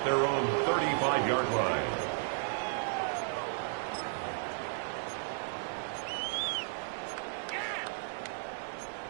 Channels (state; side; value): silent; left; 55 dB below the other